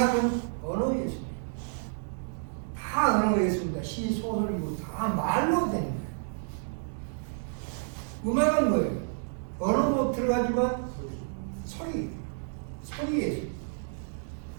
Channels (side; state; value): left; silent; digital silence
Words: 언어 예술. 다 말로 되는 거예요. 음악은 뭐예요? 언어도 들어가지만 소리예요.